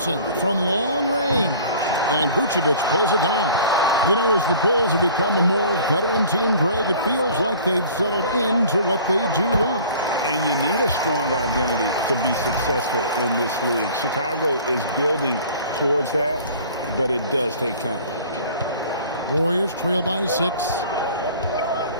from long range. And Vucevic pulls it down. You know, as the Bulls have become a more veteran team, Greg, it feels like they've settled into what they do well. And you need a strong identity to be successful in this league. Chicago is building towards that, but it does take time. Warriors trail by 6.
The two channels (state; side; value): inverted; both; correlation -0.47